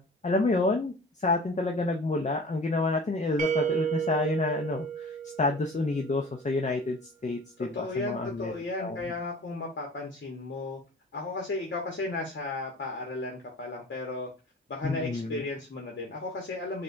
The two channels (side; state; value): both; normal; correlation 0.42